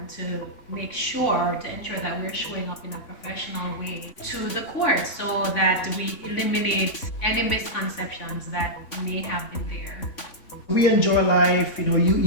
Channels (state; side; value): late; right; 3.5 ms